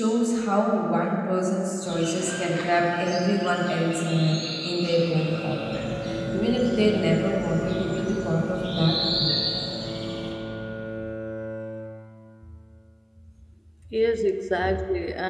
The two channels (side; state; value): both; identical; correlation 1.00